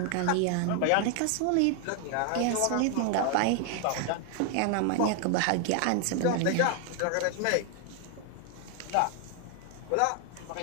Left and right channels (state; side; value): different; both; correlation 0.00